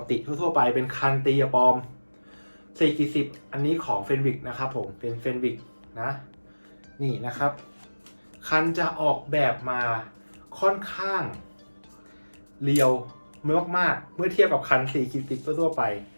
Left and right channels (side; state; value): both; inverted; correlation -1.00